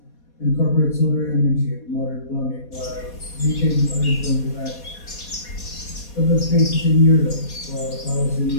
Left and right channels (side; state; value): right; late; 4.2 ms